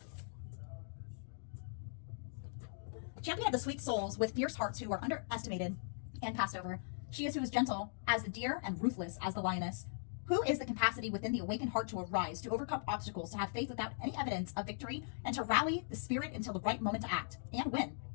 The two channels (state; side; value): silent; right; digital silence